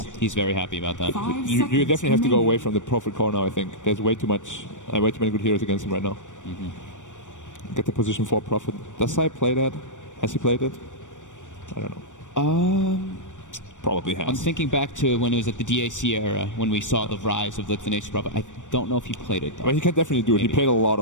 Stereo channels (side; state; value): right; late; 0.86 ms